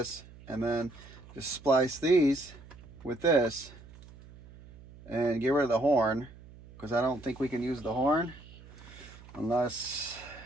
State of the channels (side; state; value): right; noise; hum, 20 dB below the sound